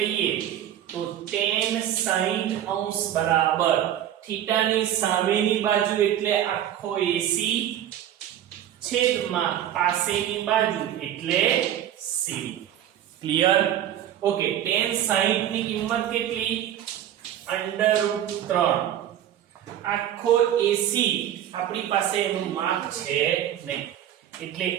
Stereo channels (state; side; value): quieter; left; 11.1 dB